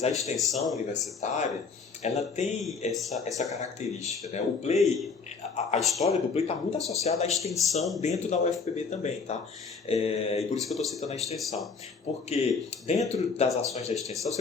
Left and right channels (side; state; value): right; quieter; 5.0 dB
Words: a extensão universitária, ela tem essa característica, né? O Play, a história do Play está muito associada à extensão dentro da UFPB também, tá? E por isso que eu estou citando a extensão. Porque dentro das ações da extensão,